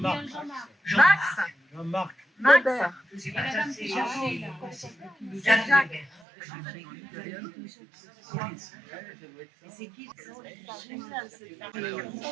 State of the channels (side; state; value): left; drops out; at 6.2 s